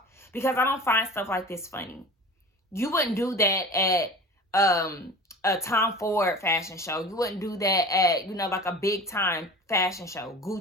because I don't find stuff like this funny. You wouldn't do that at a Tom Ford fashion show. You wouldn't do that at, like a big time fashion show.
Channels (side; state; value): both; normal; correlation 0.37